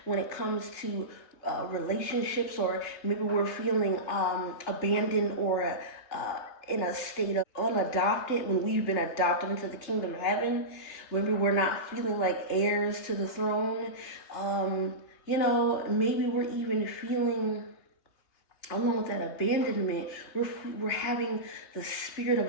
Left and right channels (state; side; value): late; right; 3.4 ms